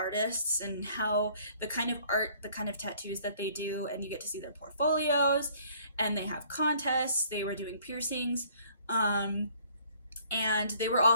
and how the kind of art, the kind of tattoos that they do, and you get to see their portfolios. And they have contests. They were doing piercings. And they were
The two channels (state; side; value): inverted; both; correlation -0.58